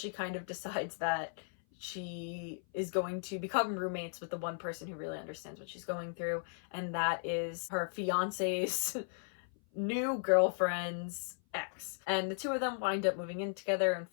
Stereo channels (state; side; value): silent; right; 54 dB below the other